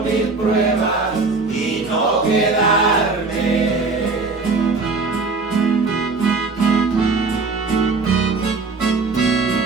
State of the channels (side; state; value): left; quieter; 4.0 dB